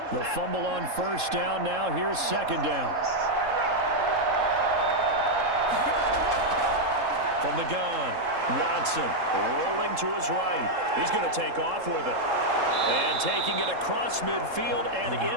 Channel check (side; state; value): left; late; 3.7 ms